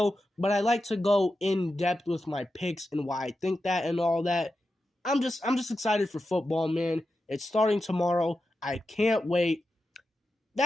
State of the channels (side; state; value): both; normal; correlation 0.90